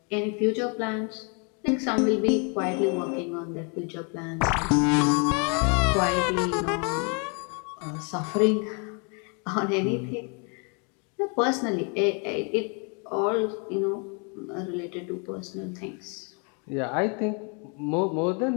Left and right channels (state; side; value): quieter; right; 36.3 dB